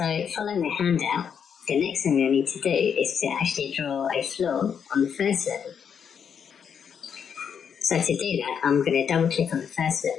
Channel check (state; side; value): quieter; right; 7.4 dB